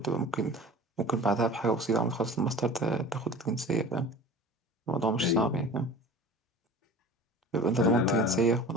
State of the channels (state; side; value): normal; both; correlation 0.39